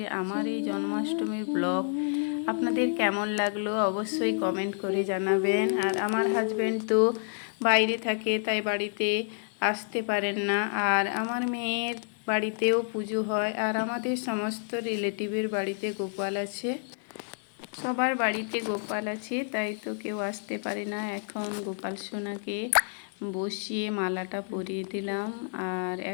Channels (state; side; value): silent; right; 58 dB below the other